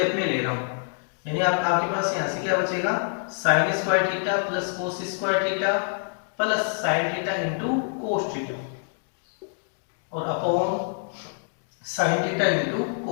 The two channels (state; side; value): silent; right; 61 dB below the other